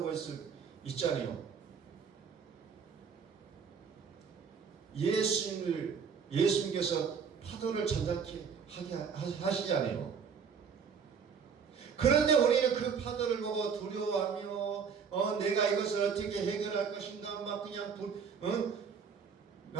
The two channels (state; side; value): quieter; left; 6.4 dB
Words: 있잖아요. 예수님께서 파도를 잔잔케 하게 하시잖아요. 그런데 우리는 그 파도를 보고 두려워하며 내가 이것을 어떻게 해결할 것인가 막 그냥